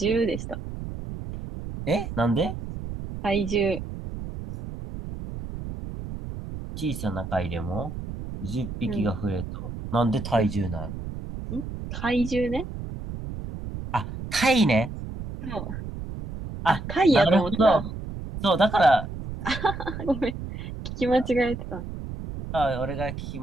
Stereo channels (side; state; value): right; noise; rumble, 8 dB below the sound